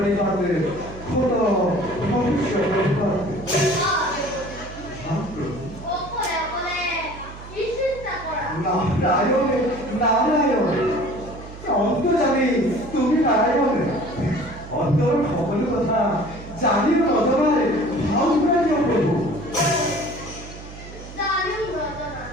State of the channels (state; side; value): noise; right; hum, 15 dB below the sound